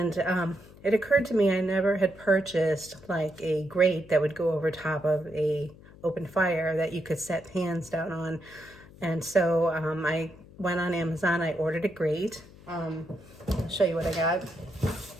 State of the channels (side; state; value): left; noise; hum, 21 dB below the sound